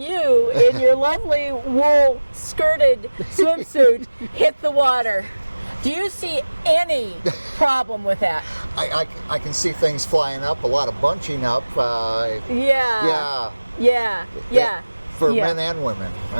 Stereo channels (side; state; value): both; inverted; correlation -1.00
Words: in your lovely wool skirted swimsuit, hit the water. Do you see any problem with that? I can see things flying up, a lot of bunching up. Yeah. For men and women.